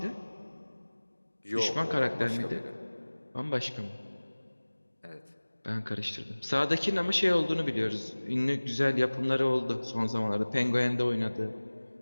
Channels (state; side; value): inverted; both; correlation -1.00